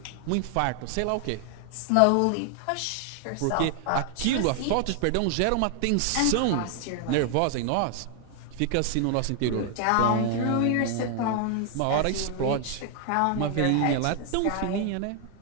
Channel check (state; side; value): different; both; correlation 0.00